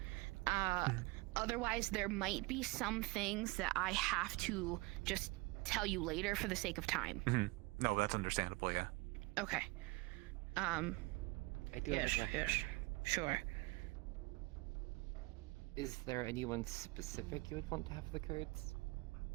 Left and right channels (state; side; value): quieter; left; 24.3 dB